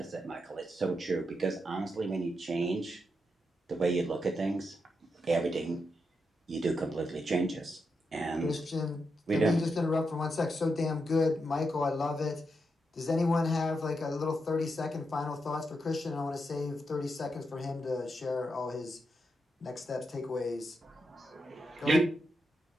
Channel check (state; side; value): normal; both; correlation 0.84